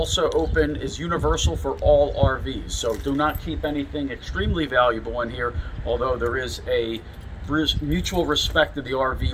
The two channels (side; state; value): both; identical; correlation 1.00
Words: open, is universal for all RVs. So do not keep anything extremely valuable in here, although there is a mutual respect to the RV